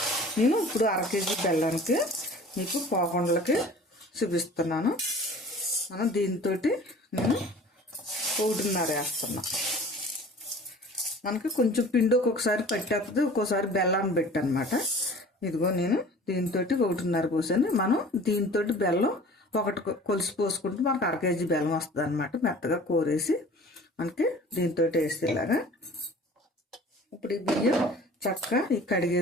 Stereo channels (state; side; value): normal; both; correlation 0.45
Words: నేను ఇప్పుడు 1/2 కేజీ బెల్లానికి మీకు పోకుండలకి చూపిస్తున్నాను. మనం దీంతో నేను 1.5 వేస్తున్నా. మనకి కొంచెం పిండి ఒక్కొక్కసారి పట్టేస్తుంది, ఒక్కోసారి బెల్లాన్ని పెట్టనమాట. ఇదిగో నేను దీంతో 1.5 పోసాను. మనం దీంతో బెల్లం 1 కొలిసి పోసుకుంటే మనకు 1/2 కేజీ బెల్లం వస్తుంది అనమాట. మెత్తగా కోరేసి మనకి దీంతో వేసేలాగా. ఇప్పుడు ఈ బియ్యం చక్కగా